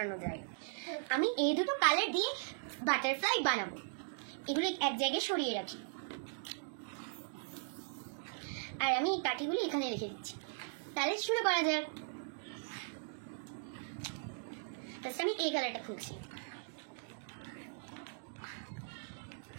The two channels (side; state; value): left; silent; digital silence